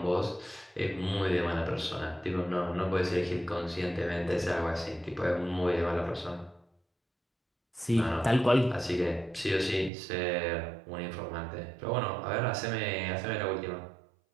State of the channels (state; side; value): drops out; left; at 9.9 s